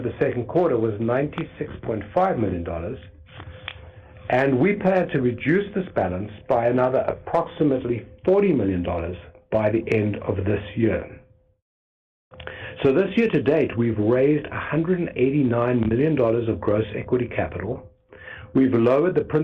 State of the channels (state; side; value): identical; both; correlation 1.00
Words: the second quarter was $96.5 million, and we plan to reduce this balance by another approximately $40 million by the end of this year. So this year to date, we've raised $189 million of gross equity capital. We've lowered the